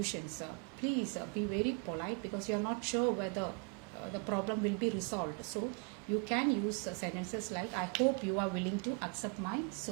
please be very polite, because you are not sure whether the problem will be resolved. So you can use sentences like I hope you are willing to accept my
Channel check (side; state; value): left; quieter; 35.1 dB